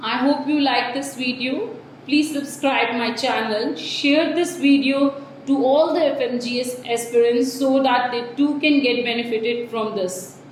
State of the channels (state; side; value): identical; both; correlation 1.00